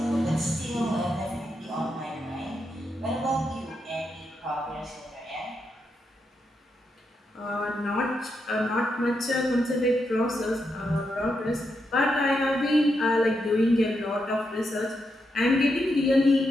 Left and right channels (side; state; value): both; normal; correlation 0.83